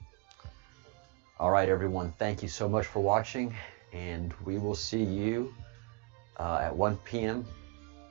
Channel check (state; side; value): quieter; left; 28.4 dB